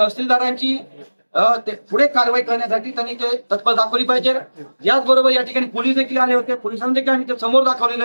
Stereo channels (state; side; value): inverted; both; correlation -1.00